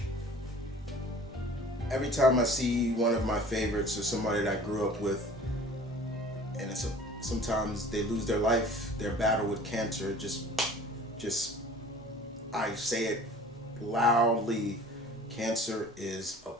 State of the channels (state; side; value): normal; both; correlation 0.46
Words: Every time I see one of my favorites or somebody that I grew up with, and sometimes they lose their life, their battle with cancer, just I say it loudly, cancer is a